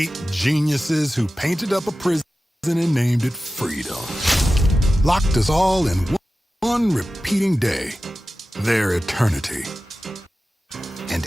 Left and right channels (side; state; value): both; normal; correlation 0.95